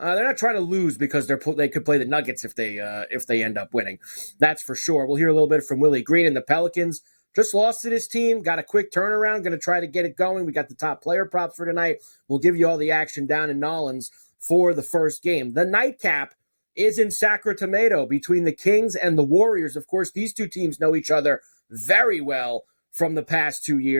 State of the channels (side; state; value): both; inverted; correlation -1.00